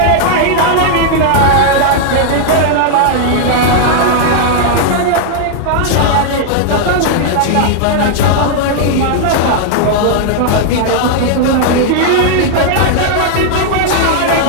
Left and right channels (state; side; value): different; both; correlation -0.01